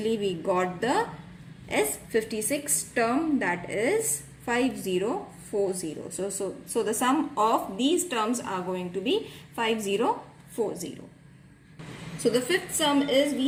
we got the S56 term, that is 5040. So the sum of these terms are going to be 5040. So the fifth sum is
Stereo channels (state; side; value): identical; both; correlation 1.00